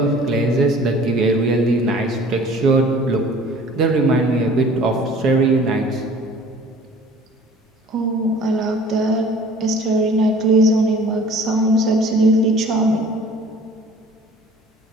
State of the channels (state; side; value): normal; both; correlation 0.49